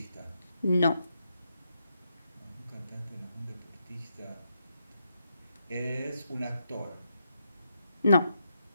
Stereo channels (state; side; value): inverted; both; correlation -0.82